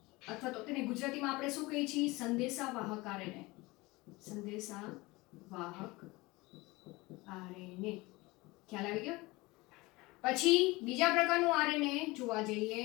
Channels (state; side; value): quieter; right; 22.3 dB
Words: અથવા તો તેને ગુજરાતીમાં આપણે શું કહીએ છીએ? સંદેશાવાહક આરએનએ. સંદેશાવાહક આરએનએ. ખ્યાલ આવી ગયો? પછી બીજા પ્રકારનું આરએનએ જોવા જઈએ